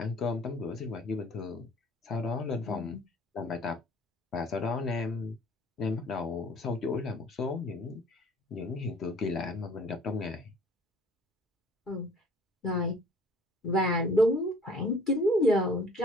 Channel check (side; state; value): both; normal; correlation 0.53